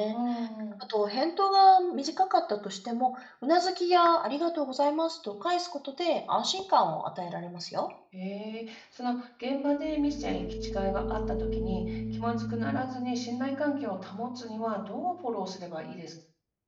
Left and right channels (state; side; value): identical; both; correlation 1.00